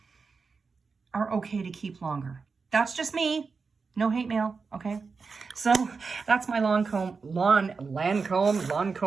are okay to keep longer. That's just me. No hate mail, okay? So that's my Lancome,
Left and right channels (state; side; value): quieter; left; 4.8 dB